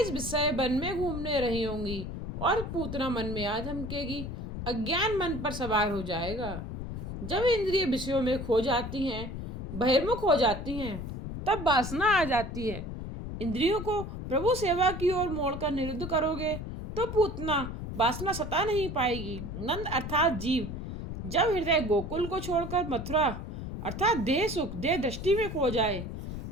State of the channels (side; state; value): left; noise; rumble, 7 dB below the sound